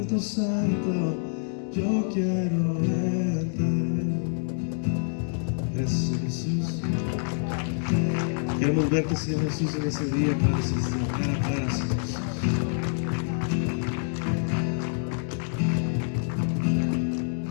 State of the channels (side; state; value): right; silent; digital silence